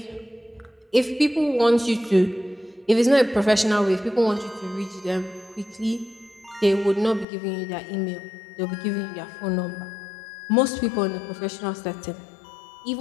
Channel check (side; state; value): right; drops out; at 7.2 s